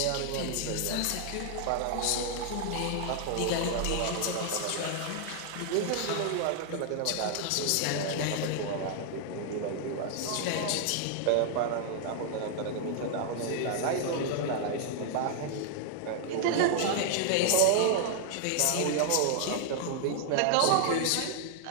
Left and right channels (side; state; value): both; different; correlation 0.00